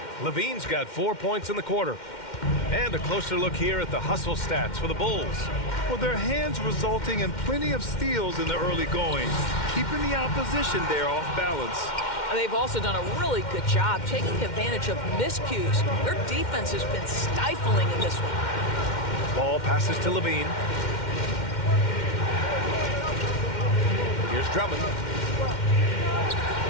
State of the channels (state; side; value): late; right; 2.1 ms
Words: Levine's got 4 points in the quarter. And a closer look here at the hustle stats for the Bulls. Well, their hands resulting in plenty of steals in the early going, keeping the opposition there off balance. They've also done a really good job taking advantage of miscues. Their defense has been stifling in this one. Ball passes to Levine. Here's Drummond.